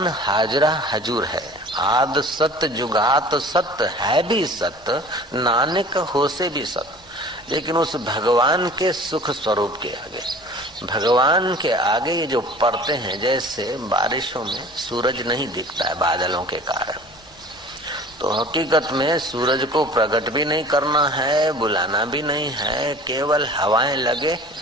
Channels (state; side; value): normal; both; correlation 0.44